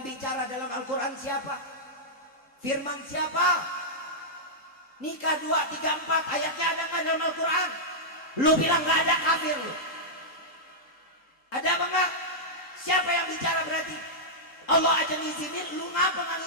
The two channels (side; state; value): right; late; 3.7 ms